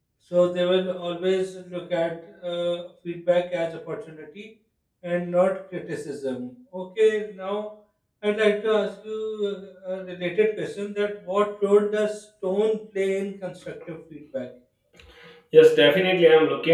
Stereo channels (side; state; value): both; identical; correlation 1.00